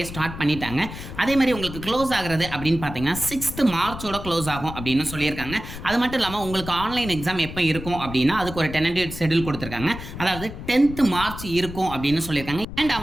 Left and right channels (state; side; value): noise; left; rumble, 11 dB below the sound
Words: ஸ்டார்ட் பண்ணிட்டாங்க. அதே மாதிரி உங்களுக்கு க்ளோஸ் ஆகிறது அப்படின்னு பார்த்தீங்கன்னா 6th March க்ளோஸ் ஆகும் அப்படின்னு சொல்லியிருக்காங்க. அது மட்டும் இல்லாமல் உங்களுக்கு ஆன்லைன் எக்ஸாம் எப்போ இருக்கும் அப்படின்னா அதுக்கு ஒரு டென்டேட்டிவ் ஷெட்யூல் கொடுத்துருக்காங்க. அதாவது 10th March இருக்கும் அப்படின்னு சொல்லியிருக்காங்க. அண்ட்